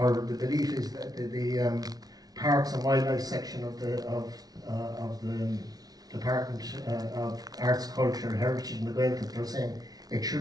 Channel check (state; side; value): late; left; 0.19 ms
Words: the belief is that the Parks and Wildlife section of the Department of Arts, Culture, Heritage and the Gaeltacht, they're saying it